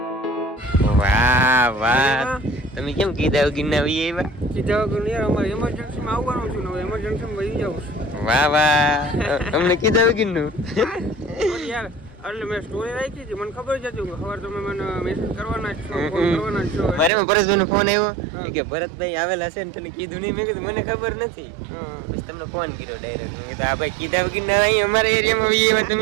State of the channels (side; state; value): left; drops out; at 17.1 s